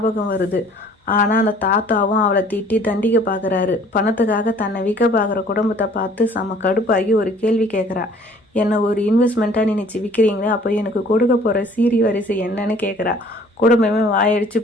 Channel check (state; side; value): normal; both; correlation 0.54